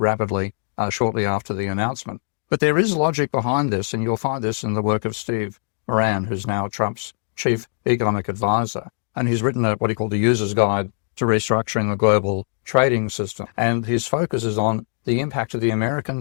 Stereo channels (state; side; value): silent; right; digital silence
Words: shortly after the announcement. But there is logic behind this, and you'll find this in the work of Steve Moran, who's now Trump's chief economic advisor. And he's written what he called the User's Guide to Restructuring the Global Trading System. And his focus is on the impact of the American